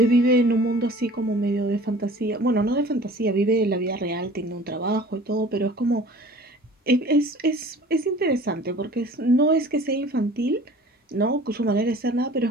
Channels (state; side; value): normal; both; correlation 0.46